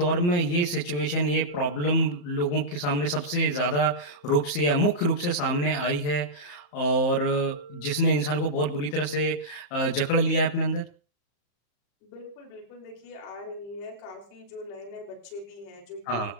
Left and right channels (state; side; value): late; right; 34 ms